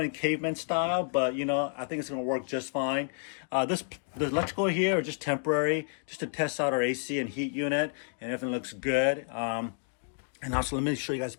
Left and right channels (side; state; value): right; silent; 58 dB below the other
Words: caveman style, but I think it's gonna work just fine. The electrical here is just temporary, just to test out our AC and heat unit, and everything looks good. And also let me show you guys